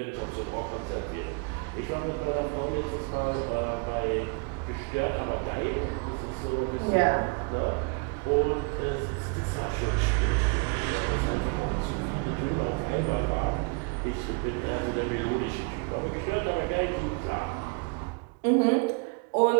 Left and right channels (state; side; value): quieter; left; 34.0 dB